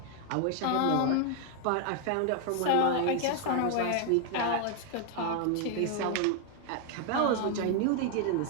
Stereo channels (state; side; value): different; both; correlation 0.00